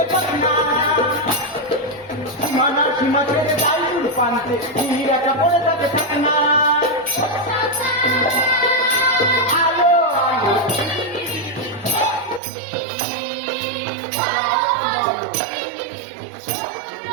পাক না, সীমানা সীমা ছেড়ে যাই দূর প্রান্তে, নীরা কাপড়ে তাকে থাকে না। আলো আলো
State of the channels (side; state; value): left; drops out; at 12.4 s